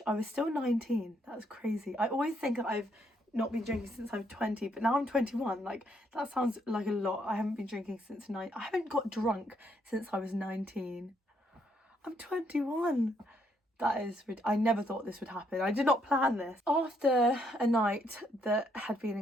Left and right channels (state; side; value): normal; both; correlation 0.72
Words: I was still 19. That was crazy. I always think I've not been drinking since I'm 20, but now I'm 21. Like, that sounds like a lot. I haven't been drinking since I haven't got drunk since I was 19. I'm 21. That is, I never thought this would happen. I did not plan this. After a night that had been